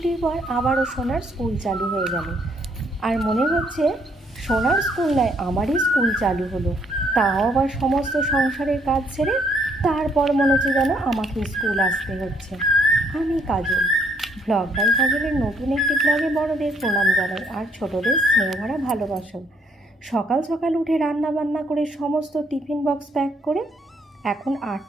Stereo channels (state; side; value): normal; both; correlation 0.68